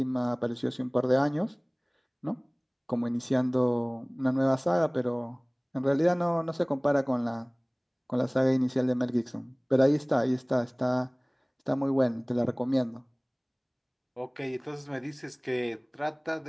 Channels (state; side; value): identical; both; correlation 1.00